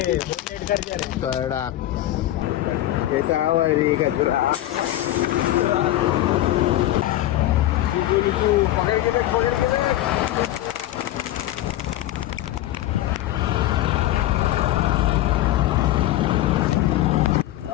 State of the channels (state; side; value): quieter; right; 14.3 dB